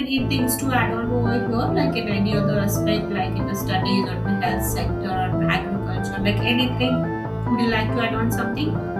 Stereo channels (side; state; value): both; identical; correlation 1.00